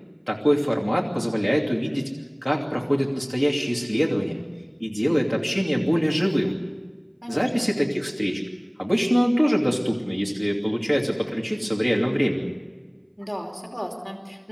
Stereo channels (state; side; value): identical; both; correlation 1.00